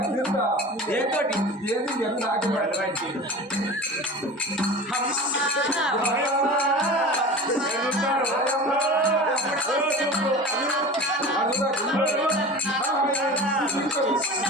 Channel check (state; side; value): normal; both; correlation 0.34